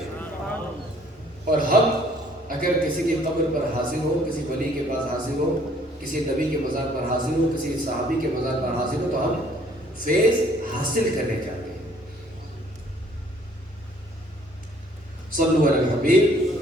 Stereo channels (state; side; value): normal; both; correlation 0.60